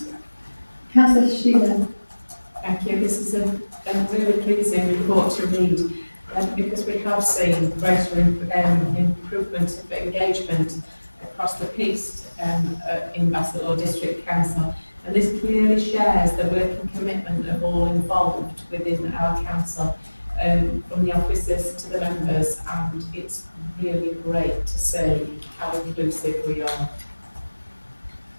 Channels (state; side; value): inverted; both; correlation -1.00